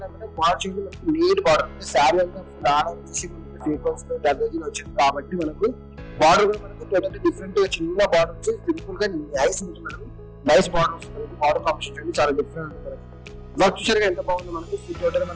బార్డర్ చూడండి మనకి నీట్ బార్డర్ అంటే శారీ అంతా ఫుల్ ఆర్డర్ వచ్చేసి మనకి సీక్వెన్స్ లో దర్దోజీలో వచ్చింది కాబట్టి మనకు బార్డర్ కూడా మనకి టోటల్ డిఫరెంట్ గా చిన్న బార్డర్ వచ్చి సింపుల్ గా నైస్ ఉంటుంది మనకి. నైస్ బార్డర్ వస్తుంది బార్డర్ కాంబినేషన్ చాలా డిఫరెంట్ ఉంటుంది మనకి. వర్క్ చూసారుగా ఎంత బాగుంది మనకి. టోటల్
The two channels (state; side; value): identical; both; correlation 1.00